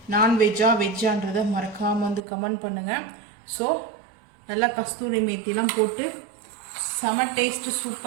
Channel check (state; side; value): drops out; left; at 2.2 s